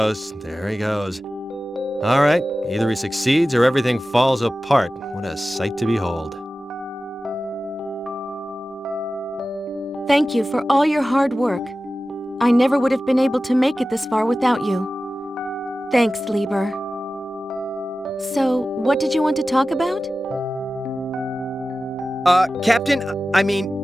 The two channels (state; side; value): normal; both; correlation 0.95